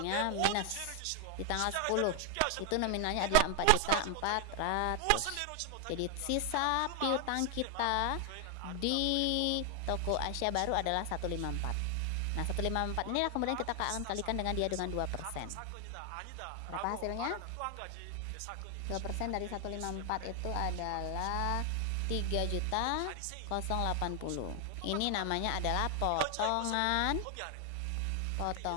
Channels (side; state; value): both; different; correlation 0.00